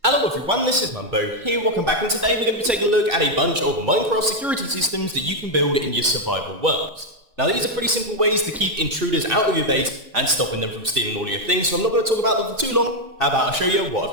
Hello everyone, this is Mumbo here, welcome back, and today we're going to be taking a look at a bunch of Minecraft security systems that you can build in your survival worlds. Now these are pretty simple ways to keep intruders out of your base and stopping them from stealing all your things, so I'm not going to talk about them for too long. How about I show you what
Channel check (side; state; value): left; late; 2.6 ms